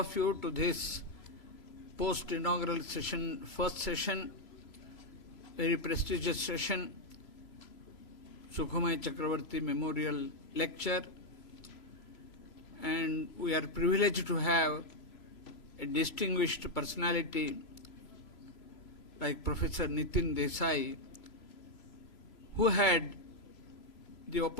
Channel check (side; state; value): right; late; 3.0 ms